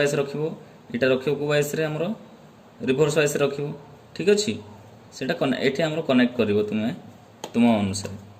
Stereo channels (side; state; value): both; identical; correlation 1.00